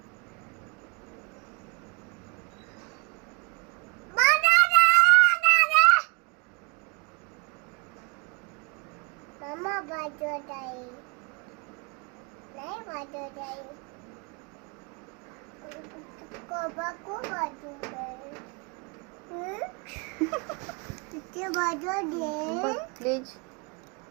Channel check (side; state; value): left; quieter; 32.4 dB